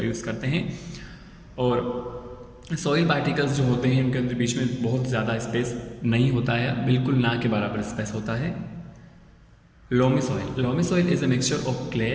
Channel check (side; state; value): both; identical; correlation 1.00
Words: यूज़ करते हैं. और सॉइल पार्टिकल्स जो होते हैं उनके अंदर बीच में बहुत ज़्यादा स्पेस नहीं होता है, बिल्कुल ना के बराबर स्पेस होता है. Loamy soil. Loamy soil is a mixture of